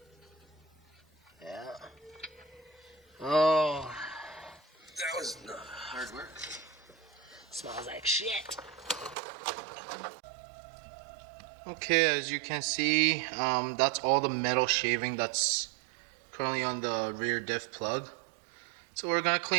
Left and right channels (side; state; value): left; drops out; at 9.2 s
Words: Yeah. Oh. That was hard work. Smells like shit. Okay, as you can see, that's all the metal shaving that's currently on the rear diff plug. So we're gonna